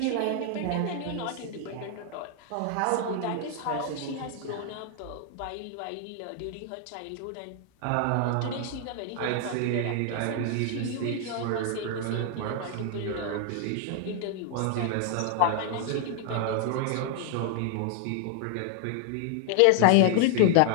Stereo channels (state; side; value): different; both; correlation 0.00